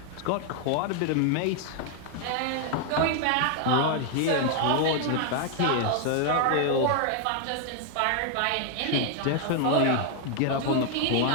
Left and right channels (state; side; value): different; both; correlation 0.00